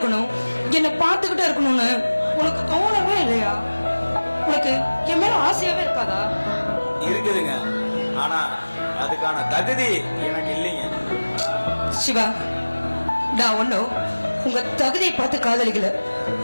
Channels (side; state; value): both; inverted; correlation -1.00